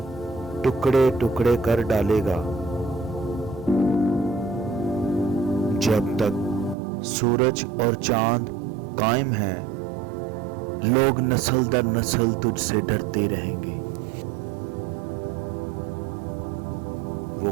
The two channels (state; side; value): drops out; left; at 6.8 s